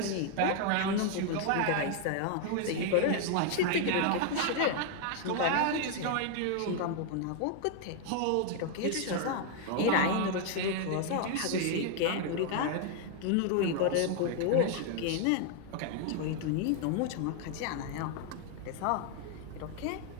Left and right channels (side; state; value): both; different; correlation 0.00